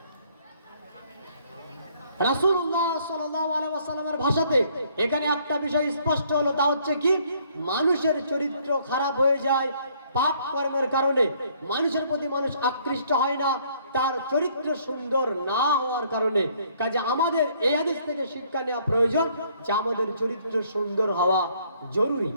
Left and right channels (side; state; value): both; inverted; correlation -0.64